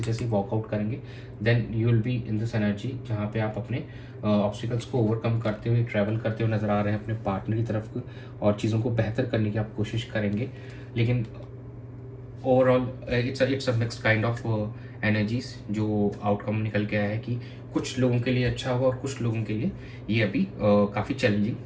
जैसे ही वॉकआउट करेंगे then you will be in this energy जहाँ पे आप अपने ऑब्स्टिकल्स को ओवरकम करते हुए ट्रैवल करते हुए नज़र आ रहे हैं अपने पार्टनर की तरफ और चीज़ों को बेहतर करने की आप कोशिश करेंगे. लेकिन overall it's a mixed kind of energies. जो आउटकम निकल के आया है कि कुछ लोगों के लिए अच्छा होगा और कुछ लोगों के लिए ये अभी काफ़ी चैलेंजिंग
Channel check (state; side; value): identical; both; correlation 1.00